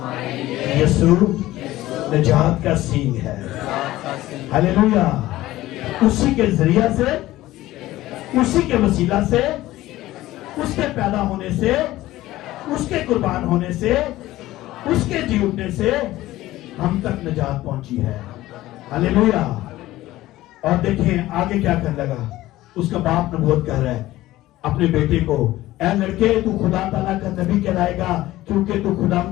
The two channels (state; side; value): quieter; right; 16.3 dB